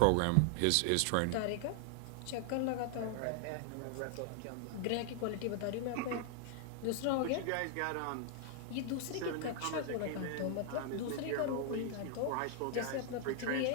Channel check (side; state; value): both; different; correlation 0.00